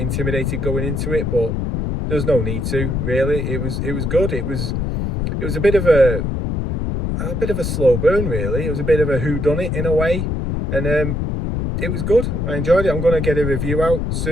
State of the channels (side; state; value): left; noise; rumble, 1 dB below the sound